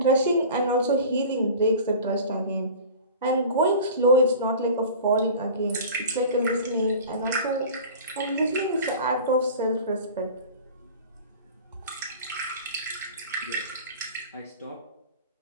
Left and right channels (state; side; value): inverted; both; correlation -0.38